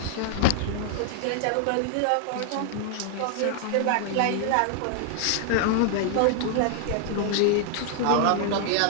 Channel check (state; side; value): different; both; correlation 0.00